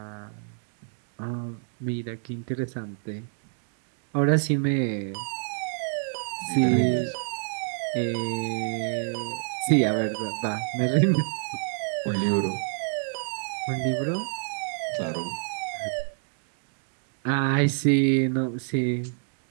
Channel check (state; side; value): silent; left; digital silence